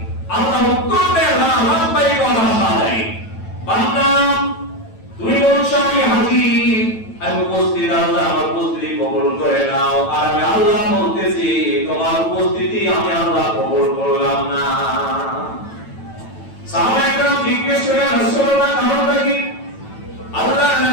আল্লাহ উত্তর দেয় লা লাব্বাইক ওয়া লা শারীকা। বান্দা আমি আল্লাহ বলতেছি তোমার উপস্থিতি আমি আল্লাহ কবুল করলাম না। সাহাবায়ে কেরাম জিজ্ঞেস করলেন রাসূলুল্লাহ কারণটা কি? আল্লাহ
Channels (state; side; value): late; right; 9.1 ms